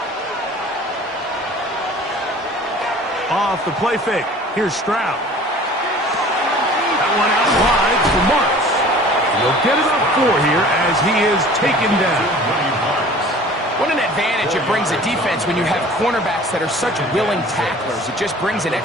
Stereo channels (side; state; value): both; normal; correlation 0.46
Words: Off the play fake. Here's Stroud. That one out wide for Marks. He'll get about 4 here as he is taken down. What an advantage it brings a defense when you have cornerbacks that are such willing tacklers. It just brings an